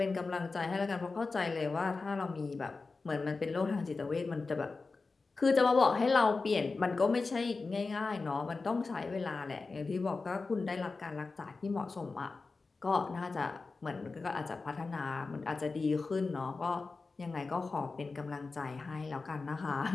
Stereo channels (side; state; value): right; quieter; 4.0 dB